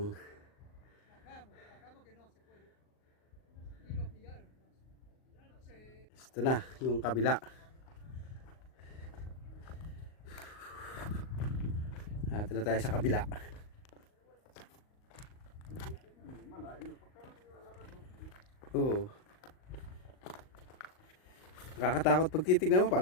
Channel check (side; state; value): right; late; 38 ms